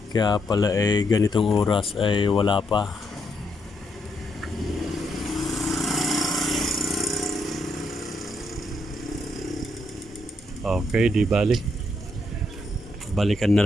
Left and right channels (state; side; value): normal; both; correlation 0.78